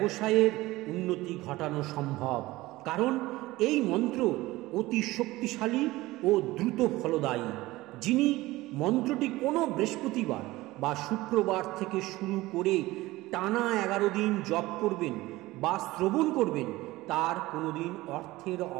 উন্নতি ঘটানো সম্ভব, কারণ এই মন্ত্র অতি শক্তিশালী ও দ্রুত ফলদায়ী। যিনি মন্ত্রটি কোনো বৃহস্পতিবার বা শুক্রবার থেকে শুরু করে টানা 11 দিন জপ করবেন বা শ্রবণ করবেন, তার কোনোদিন অর্থের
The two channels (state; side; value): quieter; left; 18.7 dB